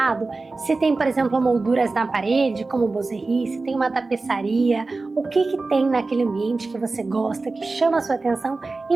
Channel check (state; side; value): quieter; left; 3.6 dB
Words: se tem, por exemplo, molduras na parede, como boiserie, se tem uma tapeçaria, o que tem naquele ambiente que você gosta, que chama a sua atenção